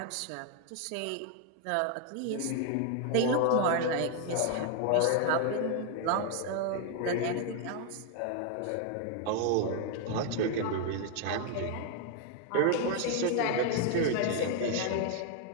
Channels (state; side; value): different; both; correlation 0.00